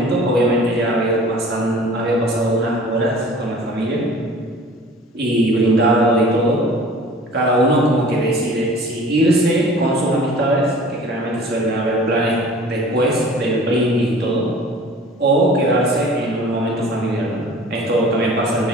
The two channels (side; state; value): both; normal; correlation 0.46